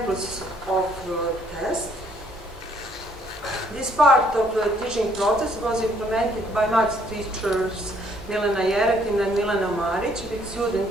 of tests. This part of the teaching process was implemented by maths teachers Milena Jeretin and Milena Maric with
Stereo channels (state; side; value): normal; both; correlation 0.65